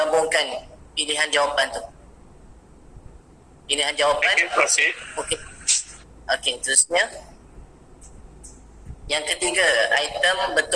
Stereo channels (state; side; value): identical; both; correlation 1.00